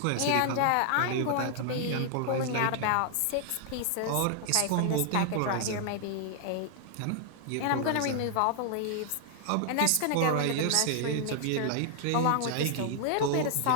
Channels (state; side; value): different; both; correlation -0.01